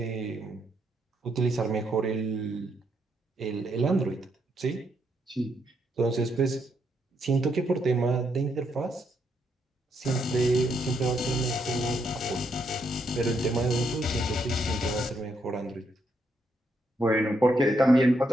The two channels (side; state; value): both; normal; correlation 0.77